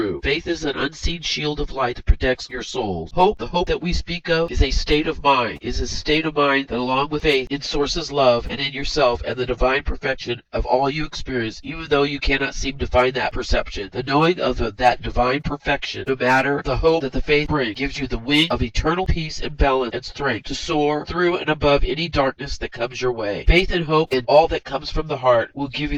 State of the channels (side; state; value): both; identical; correlation 1.00